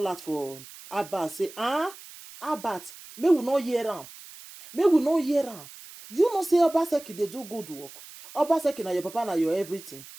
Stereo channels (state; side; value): noise; right; hiss, 17 dB below the sound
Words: out for Abat. Say, Abat, may we not hear am. You know say Obaseki they do good work. Obaseki na your papa na your everything.